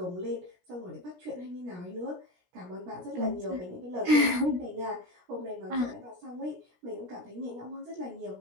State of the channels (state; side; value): late; left; 17 ms